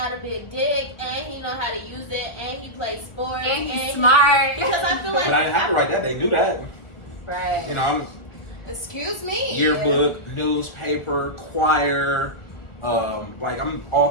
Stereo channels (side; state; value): right; late; 1.4 ms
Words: a big dick and he know how to use it and he plays sports And he's smart. Because I feel like But I didn't have to write that. They knew that. Right. You know, I'm excuse me. yearbook, newspaper, choir. Like I'm all